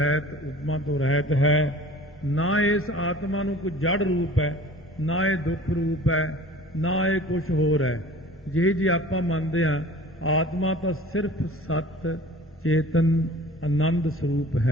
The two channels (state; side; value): normal; both; correlation 0.45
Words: ਉਪਮਾ ਤੋਂ ਰਹਿਤ ਹੈ। ਨਾ ਇਸ ਆਤਮਾ ਨੂੰ ਕੋਈ ਜੜ ਰੂਪ ਹੈ, ਨਾ ਇਹ ਦੁੱਖ ਰੂਪ ਹੈ, ਨਾ ਇਹ ਕੁਝ ਹੋਰ ਹੈ। ਜੇ ਆਪਾਂ ਮੰਨਦੇ ਹਾਂ ਆਤਮਾ ਤਾਂ ਸਿਰਫ ਸਤ ਚੇਤਨ ਆਨੰਦ ਸਰੂਪ